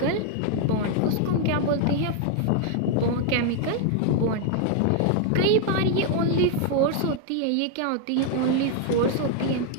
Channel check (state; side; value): different; both; correlation 0.00